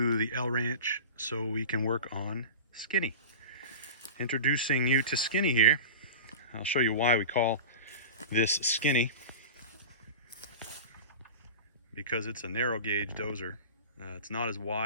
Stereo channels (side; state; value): both; inverted; correlation -0.31